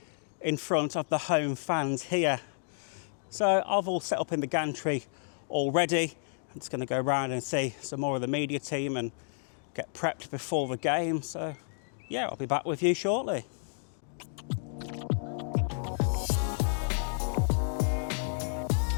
in front of the home fans here. So I've all set up in the gantry already. I'm just going to go around and see some more of the media team and get prepped before the game. So yeah, I'll be back with you shortly.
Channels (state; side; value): silent; right; digital silence